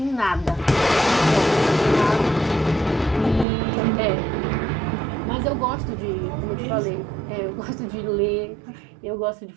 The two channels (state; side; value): drops out; left; at 3.5 s